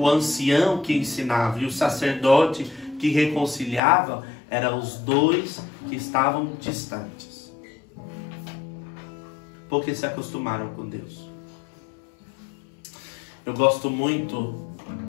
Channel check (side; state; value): right; drops out; at 3.8 s